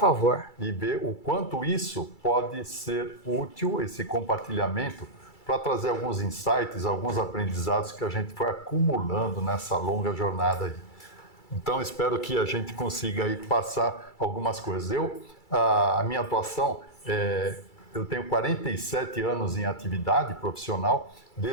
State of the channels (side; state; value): right; late; 2.3 ms